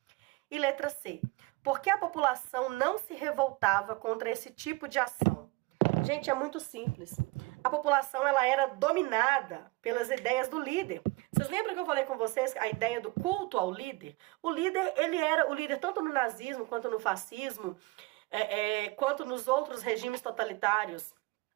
E letra C. Por que a população não se revoltava contra esse tipo de ação? Gente, é muito simples. A população, ela era dominada pelas ideias do líder. Vocês lembram que eu falei com vocês a ideia do culto ao líder? O líder, ele era o líder tanto no nazismo, quanto no fascismo, quanto nos outros regimes totalitários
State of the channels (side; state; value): left; quieter; 23.0 dB